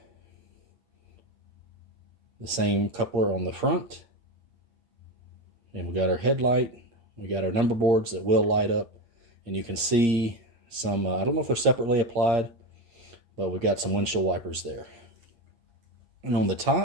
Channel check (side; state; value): left; late; 8.6 ms